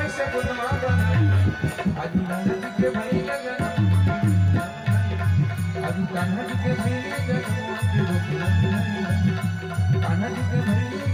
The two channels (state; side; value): identical; both; correlation 1.00